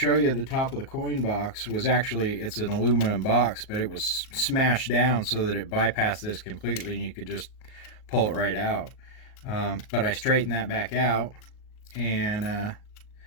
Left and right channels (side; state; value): right; late; 38 ms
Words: you the top of the coin box was actually, it's an aluminum box, but it was smashed down so that it bypassed this completely and you could just pull it right out. But I straightened that back out, and